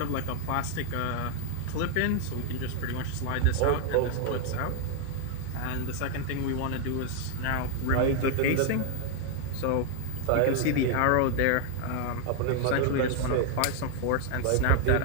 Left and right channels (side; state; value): both; different; correlation 0.00